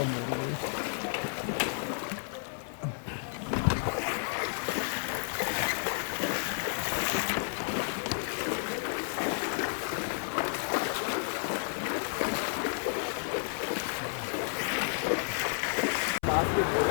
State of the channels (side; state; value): right; silent; 57 dB below the other